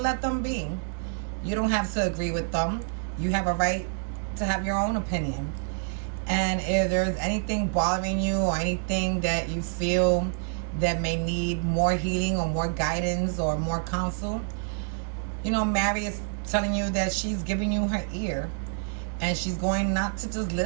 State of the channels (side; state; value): left; silent; digital silence